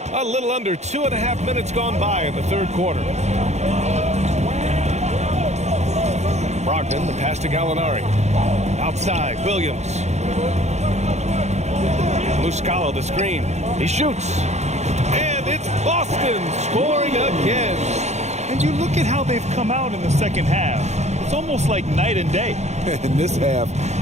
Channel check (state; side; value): late; left; 0.33 ms